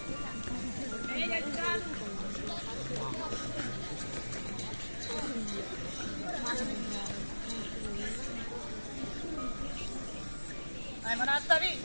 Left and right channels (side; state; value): both; inverted; correlation -1.00